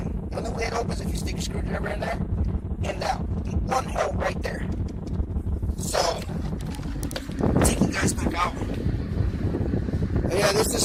The only way it opens is if you stick a screwdriver in there, and that one hole right there. So yeah, this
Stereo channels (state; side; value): identical; both; correlation 1.00